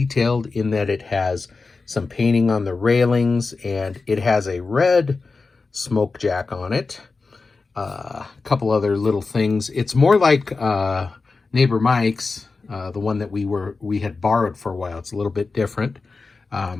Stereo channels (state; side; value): quieter; right; 4.1 dB